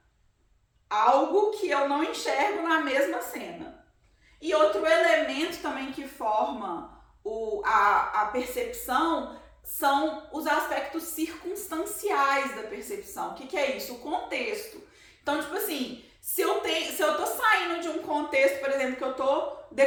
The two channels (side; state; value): both; identical; correlation 1.00